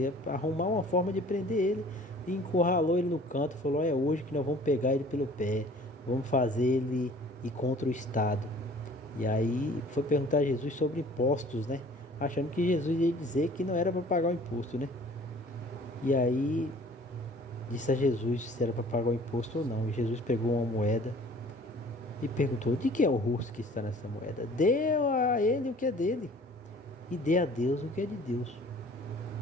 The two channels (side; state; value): both; normal; correlation 0.51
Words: arrumar uma forma de prender ele e encurralou ele no canto e falou: é hoje que nós vamos pegar ele pelo pé, vamos fazer ele ir contra o Estado. E aí foi perguntar a Jesus sobre impostos, né? Achando que Jesus ia dizer que não era para pagar o imposto, né? E aí disse a Jesus se era para pagar o imposto ou não. E Jesus pegou uma moeda e perguntou: de quem é o rosto que está nessa moeda? Deu a ele o que é dele e dê a Deus o que é de Deus.